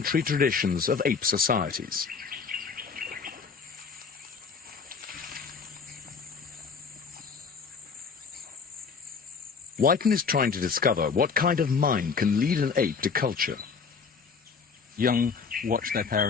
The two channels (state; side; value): quieter; right; 5.5 dB